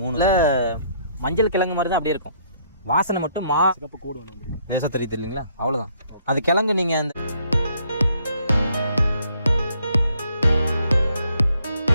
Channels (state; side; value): inverted; both; correlation -0.67